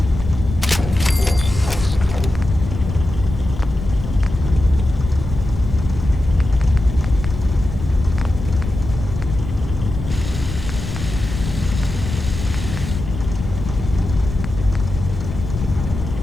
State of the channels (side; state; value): left; noise; rumble, 7 dB below the sound